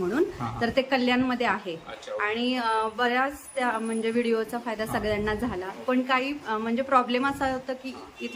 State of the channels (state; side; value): identical; both; correlation 1.00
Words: तर ते कल्याणमध्ये आहे आणि बऱ्याच त्या म्हणजे व्हिडिओचा फायदा सगळ्यांना झाला। पण काही म्हणजे प्रॉब्लेम असा होता की